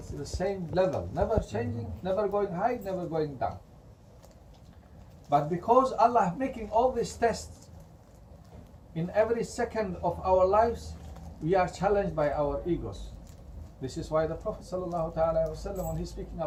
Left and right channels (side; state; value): both; identical; correlation 1.00